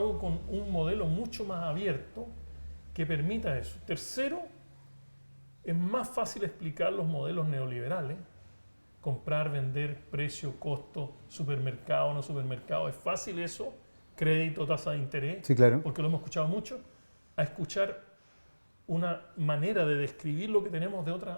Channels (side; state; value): both; inverted; correlation -1.00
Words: con un modelo mucho más abierto que permita eso. Tercero, es más fácil explicar los modelos neoliberales, comprar, vender, precio, costo, supermercado, no supermercado, es fácil eso, crédito, tasa de interés, sí, claro, porque lo hemos escuchado mucho, a escuchar una manera de describir lo que tenemos de